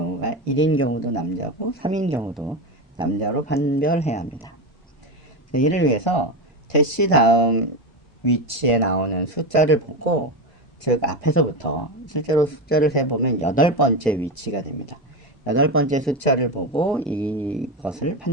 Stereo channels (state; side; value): normal; both; correlation 0.16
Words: 1인 경우도 남자고 3인 경우도 남자로 판별해야 합니다. 이를 위해서 대시 다음 위치에 나오는 숫자를 보고, 즉 앞에서부터 실제로 숫자를 세보면 8번째 위치가 됩니다. 8번째 숫자를 보고 이것을